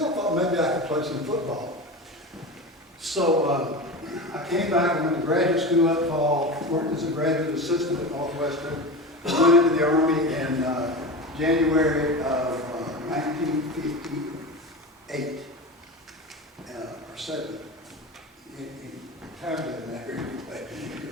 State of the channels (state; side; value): normal; both; correlation 0.27